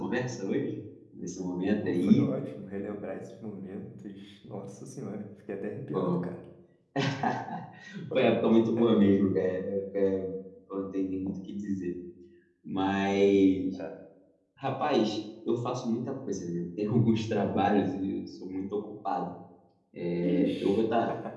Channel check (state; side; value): identical; both; correlation 1.00